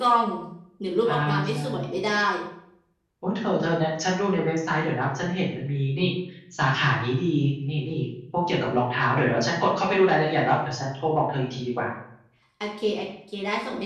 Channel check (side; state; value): both; identical; correlation 1.00